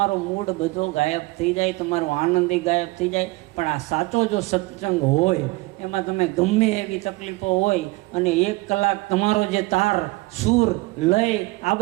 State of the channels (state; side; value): quieter; left; 22.4 dB